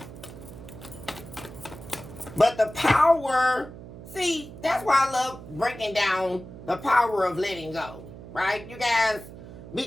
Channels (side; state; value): right; noise; hum, 15 dB below the sound